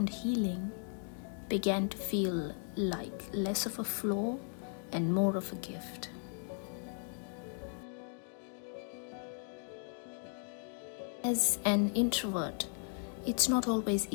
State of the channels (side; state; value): right; silent; 53 dB below the other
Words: healing began to feel like less of a flaw and more of a gift. As an introvert, it's not always